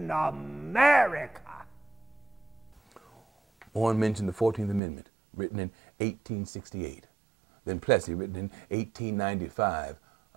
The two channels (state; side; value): drops out; left; at 4.8 s